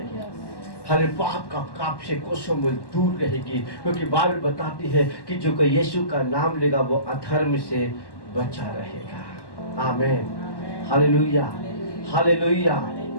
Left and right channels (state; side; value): late; right; 1.1 ms